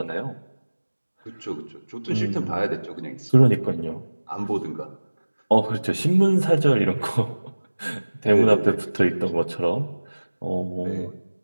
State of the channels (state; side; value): inverted; both; correlation -1.00